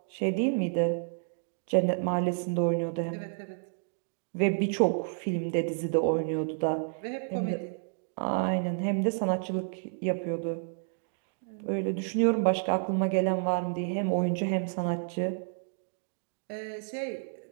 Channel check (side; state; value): left; silent; digital silence